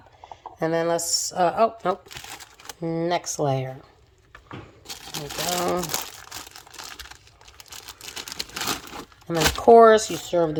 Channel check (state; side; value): identical; both; correlation 1.00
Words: And then let's, oh, nope. Next layer. There we go. And then, of course, you serve